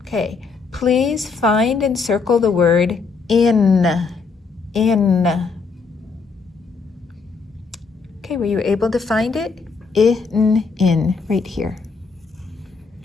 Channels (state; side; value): quieter; right; 4.7 dB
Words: Okay, please find and circle the word in. Okay, were you able to find it? In, right here.